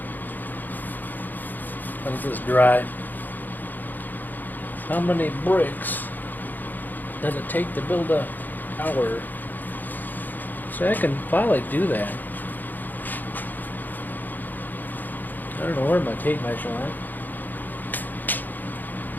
let this dry. How many bricks does it take to build a tower? So I can probably do that. I don't know where my tape measure went.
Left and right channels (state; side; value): late; right; 0.086 ms